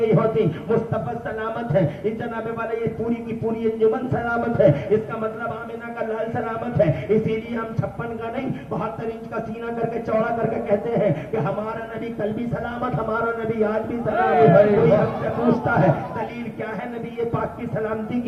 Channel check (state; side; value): identical; both; correlation 1.00